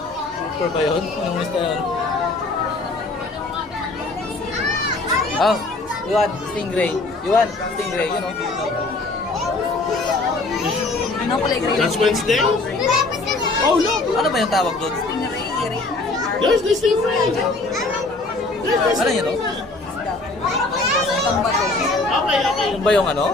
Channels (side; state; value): right; quieter; 3.2 dB